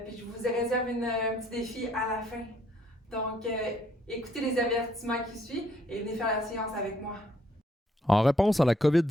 je vous réserve un petit défi à la fin. Donc, écoutez les avertissements qui suivent et venez faire la séance avec moi. En réponse à la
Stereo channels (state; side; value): normal; both; correlation 0.68